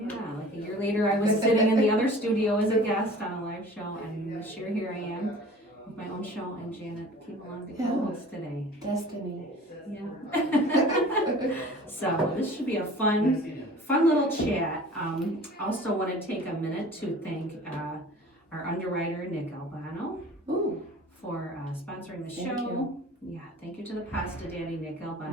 like a year later, I was sitting in the other studio as a guest on a live show, and this year here I am with my own show, and Janet came along to co-host today. Destiny. Yeah. So this should be a fun little chat. Also want to take a minute to thank our underwriter, Nick Albano, for sponsoring the show. You. Yeah, thank you to the Pasta Daddy, Nick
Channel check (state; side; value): normal; both; correlation 0.44